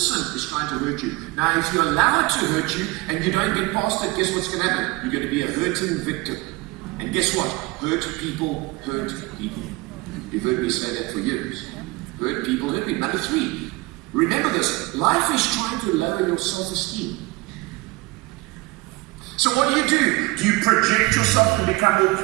is trying to hurt you. Now, if you allow it to hurt you and you don't get past it, guess what's going to happen? You're going to be a hurting victim. And guess what? Hurt people hurt people. You've heard me say that for years. Hurt people hurt people. Number 3, remember this. Life is trying to lower your self-esteem. So what do? Do you project yourself and become all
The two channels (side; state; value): left; quieter; 22.8 dB